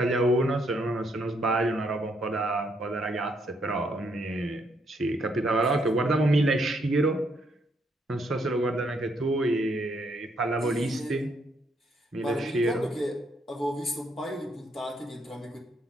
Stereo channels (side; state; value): both; normal; correlation 0.73